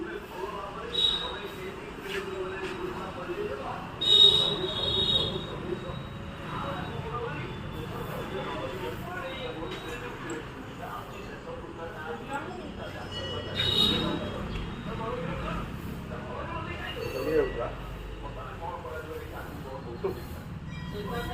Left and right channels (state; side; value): identical; both; correlation 1.00